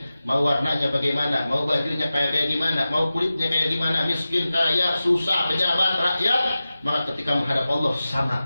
Mau warnanya bagaimana, mau bajunya kayak gimana, mau kulitnya kayak gimana, miskin, kaya, susah, pejabat, rakyat, maka ketika menghadap Allah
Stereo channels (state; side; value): inverted; both; correlation -0.94